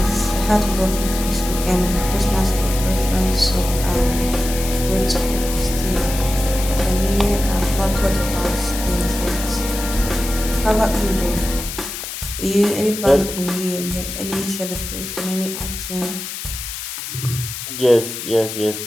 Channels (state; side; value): noise; left; hiss, 7 dB below the sound